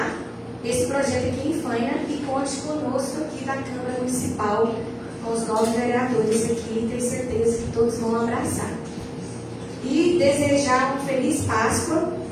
esse projeto aqui em Faina e conte conosco aqui da Câmara Municipal, com os 9 vereadores aqui, tenho certeza que todos vão abraçar. E desejar uma feliz Páscoa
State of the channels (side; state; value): both; identical; correlation 1.00